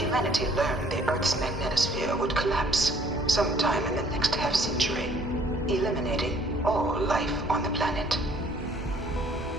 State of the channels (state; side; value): normal; both; correlation 0.60